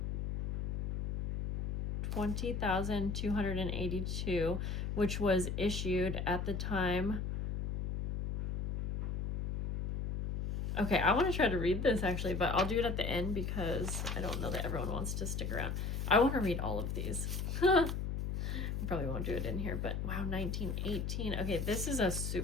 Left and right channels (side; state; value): left; noise; hum, 2 dB below the sound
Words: which was issued at the time. Okay, I want to try to read this actually, but I'll do it at the end because I don't know that everyone wants to stick around. I want to read all of these. I probably won't do it in here, but wow, 1918. Okay, this is a